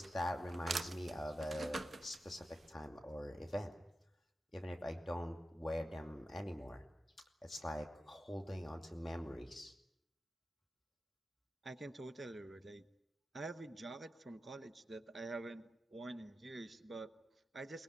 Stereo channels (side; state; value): both; normal; correlation 0.92